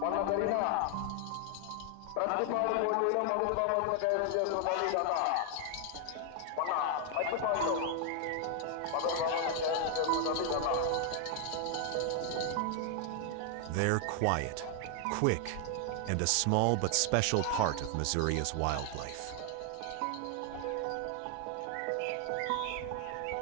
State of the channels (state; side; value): different; both; correlation 0.00